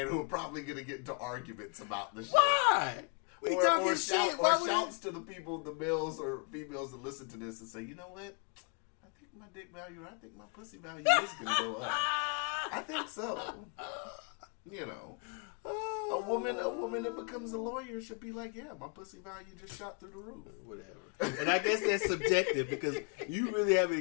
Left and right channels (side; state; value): right; quieter; 38.2 dB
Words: who are probably going to get into arguments about the shit. Why? Or shouts to the people, the males or females that listen to this and say, you know what? I think my dick value, I think my pussy value is going to go up. I think so. You know. A woman that becomes a lawyer should be like, yeah, my pussy value just shot through the roof. Whatever. And I guess that's subjective because you really haven't